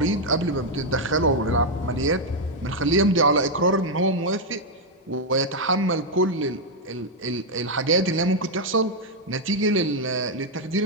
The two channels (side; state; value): both; normal; correlation 0.01